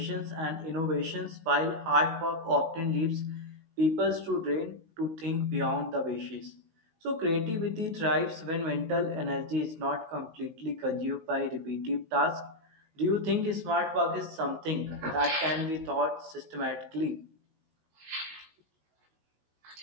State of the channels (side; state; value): left; late; 19 ms